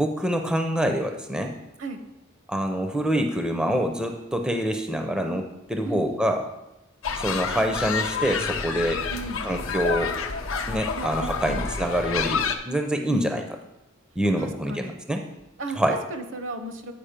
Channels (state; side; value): normal; both; correlation 0.67